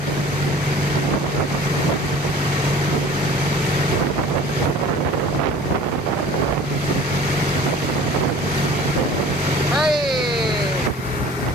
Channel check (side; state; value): both; normal; correlation 0.45